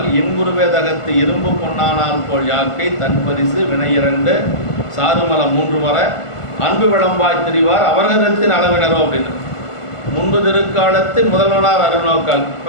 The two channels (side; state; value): right; late; 1.5 ms